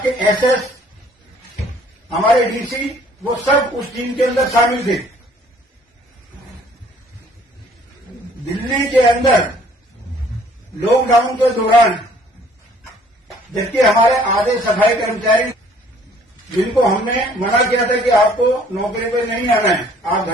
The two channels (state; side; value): normal; both; correlation 0.58